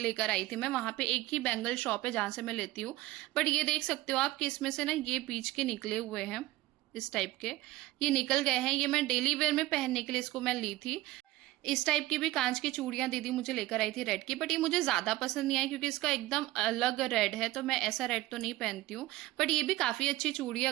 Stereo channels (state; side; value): quieter; left; 17.4 dB